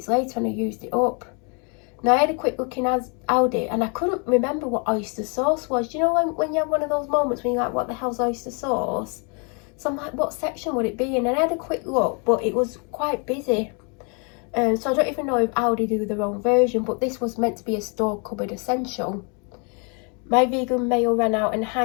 later and I used it up. Now I had a quick look in Aldi and I couldn't remember what oyster sauce was. Do you know when you have one of those moments when you're like, what the hell's oyster sauce? So I'm like, what section would it be in? And I had a quick look, but it was quite busy. So I don't even know if Aldi do their own version, but this was meant to be a store cupboard essential. My vegan mayo ran out and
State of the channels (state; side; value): quieter; right; 36.0 dB